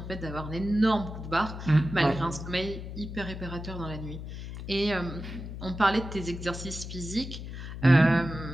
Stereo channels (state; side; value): noise; left; hum, 9 dB below the sound